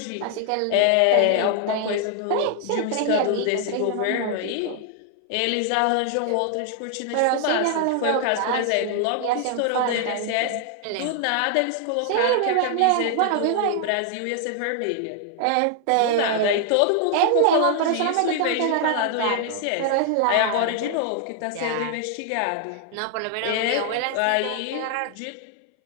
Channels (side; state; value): both; different; correlation 0.00